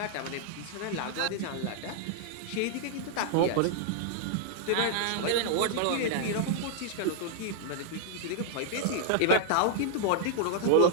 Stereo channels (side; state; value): both; different; correlation 0.00